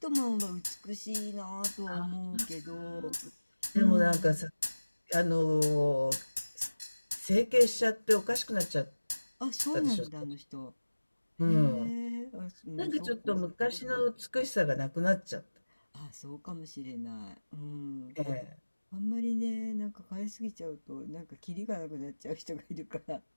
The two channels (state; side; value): inverted; both; correlation -1.00